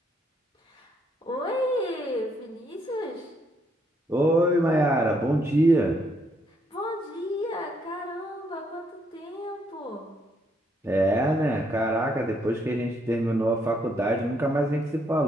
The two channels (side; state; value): both; normal; correlation 0.73